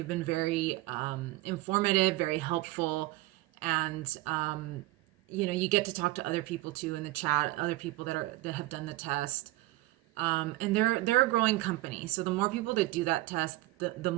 been very informative, very helpful, and you get to talk to other people too in the chat, other people that have done the test. And they're a growing company. So the more people that do that test, the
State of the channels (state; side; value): quieter; left; 19.0 dB